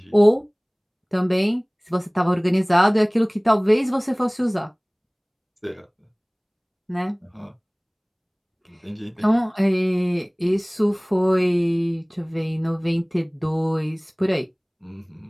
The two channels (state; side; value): identical; both; correlation 1.00